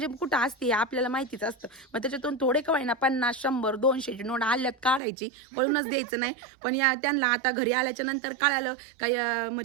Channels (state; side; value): drops out; left; at 5.0 s